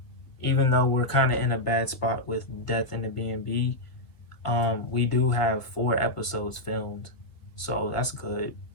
even though we're kind of in a bad spot with Death in the B&B, we do have 4 episodes filmed, so that's good.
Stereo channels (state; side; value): late; right; 1.6 ms